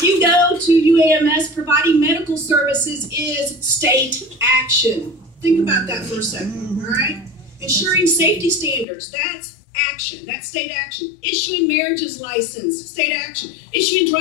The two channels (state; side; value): drops out; right; at 8.8 s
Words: you go to UAMS, providing medical services is state action. Think about that for a second, all right? Ensuring safety standards, that's action. That's state action. Issuing marriages license, state action. Issuing